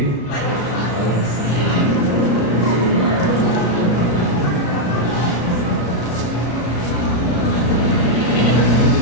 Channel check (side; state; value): right; late; 33 ms